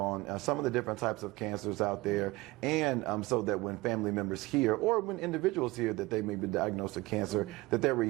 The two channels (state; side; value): quieter; left; 20.8 dB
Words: some of the different types of cancers out there, and so that when family members hear or when individuals hear that they may be diagnosed with cancer, that their